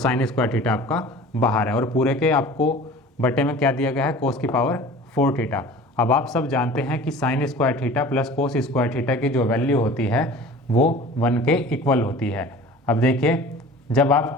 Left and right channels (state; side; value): normal; both; correlation 0.42